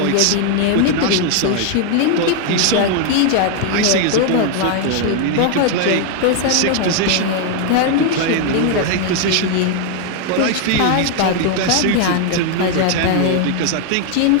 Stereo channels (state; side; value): different; both; correlation 0.00